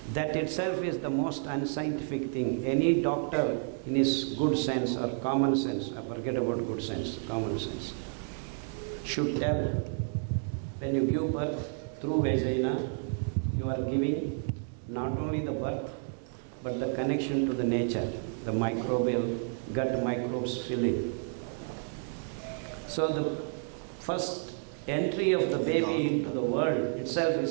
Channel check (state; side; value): silent; left; 57 dB below the other